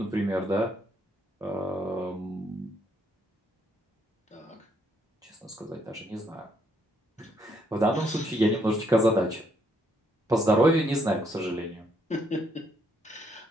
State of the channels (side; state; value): both; normal; correlation 0.72